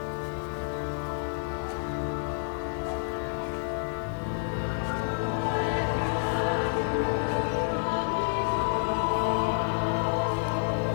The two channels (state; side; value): silent; right; digital silence